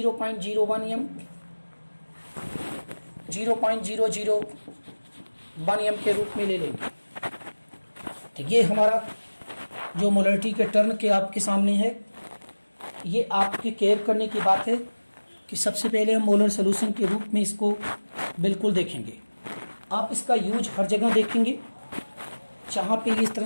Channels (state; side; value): inverted; both; correlation -1.00